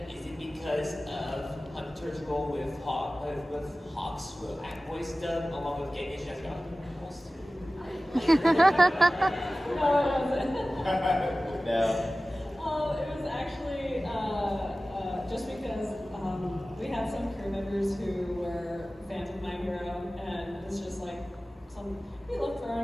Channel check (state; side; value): normal; both; correlation 0.97